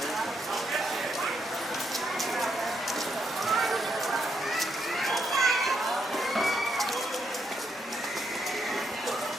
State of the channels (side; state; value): both; normal; correlation 0.78